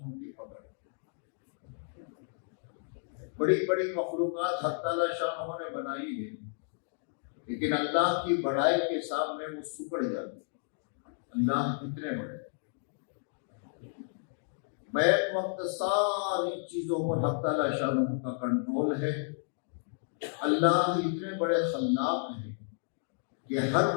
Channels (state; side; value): silent; right; digital silence